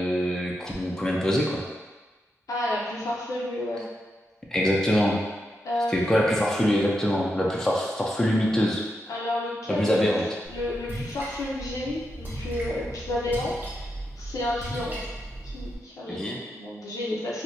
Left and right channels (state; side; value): normal; both; correlation 0.85